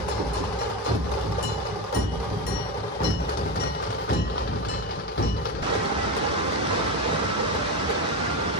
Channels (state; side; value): normal; both; correlation 0.17